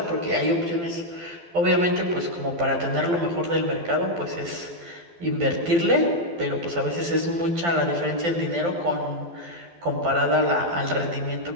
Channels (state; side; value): late; left; 12 ms